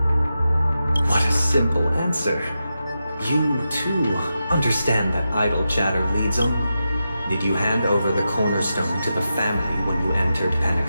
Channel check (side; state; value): both; inverted; correlation -0.90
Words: What a simple answer. You, too, understand that idle chatter leads on? Did you hand over the cornerstone to the family when you entered